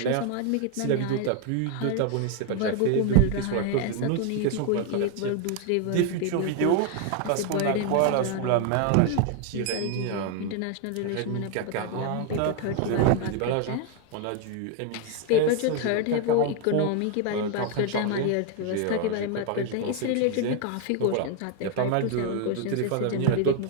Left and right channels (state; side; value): different; both; correlation 0.01